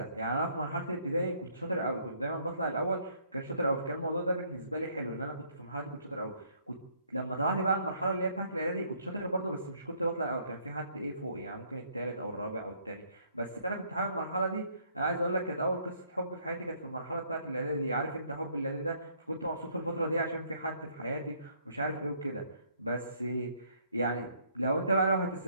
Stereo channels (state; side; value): inverted; both; correlation -0.66